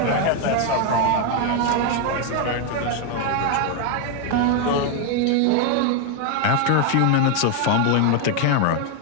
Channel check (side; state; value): both; different; correlation 0.01